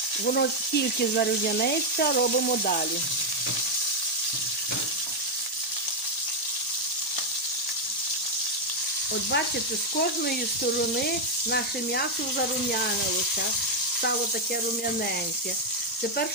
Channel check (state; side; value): normal; both; correlation 0.01